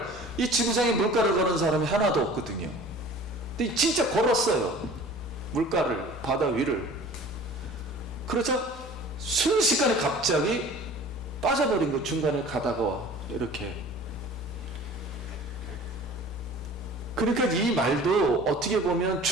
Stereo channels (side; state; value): both; normal; correlation 0.44